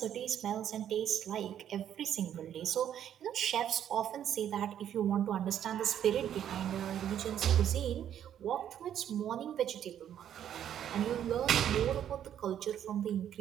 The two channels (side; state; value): left; quieter; 10.1 dB